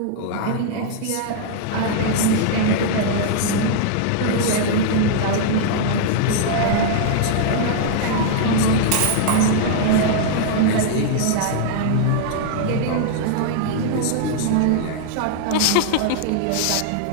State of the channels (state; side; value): different; both; correlation -0.01